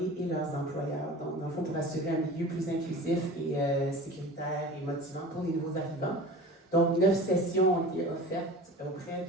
et leurs employeurs. Donc, dans le fond, pour assurer un milieu plus inclusif et sécuritaire et motivant pour les nouveaux arrivants. Donc, 9 sessions ont été offertes auprès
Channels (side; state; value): both; normal; correlation 0.36